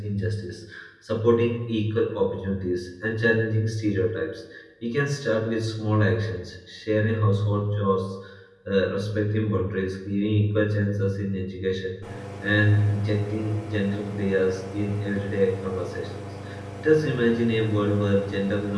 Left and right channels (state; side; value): identical; both; correlation 1.00